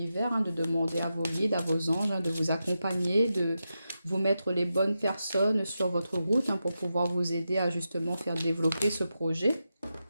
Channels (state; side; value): inverted; both; correlation -0.89